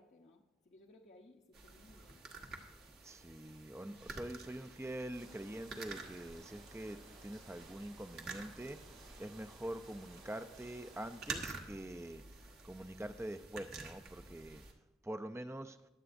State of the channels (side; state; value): both; normal; correlation 0.82